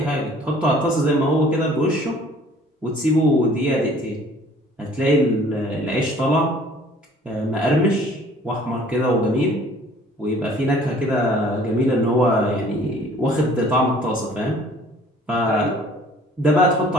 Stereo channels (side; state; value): both; normal; correlation 0.53